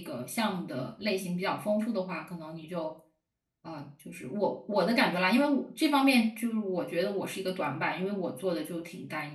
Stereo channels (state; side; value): identical; both; correlation 1.00